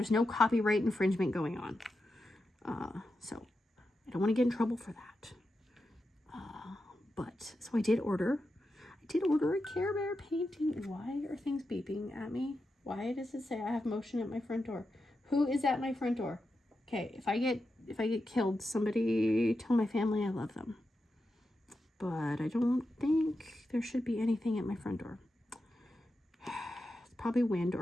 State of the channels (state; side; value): normal; both; correlation 0.89